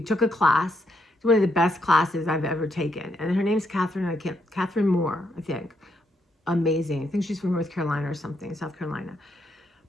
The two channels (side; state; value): both; normal; correlation 0.77